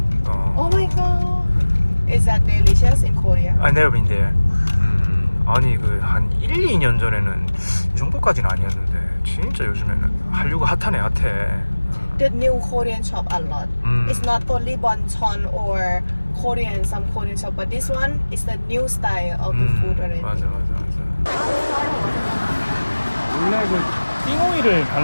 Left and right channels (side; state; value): both; inverted; correlation -1.00